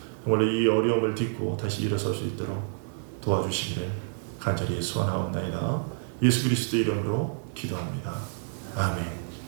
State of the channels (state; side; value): silent; left; digital silence